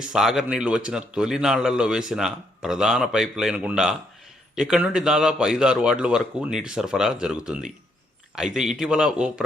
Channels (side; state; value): both; normal; correlation 0.74